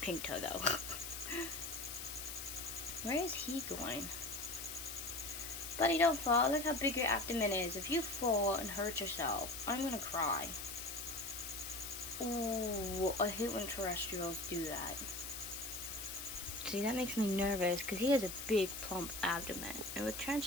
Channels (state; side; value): noise; left; hiss, 7 dB below the sound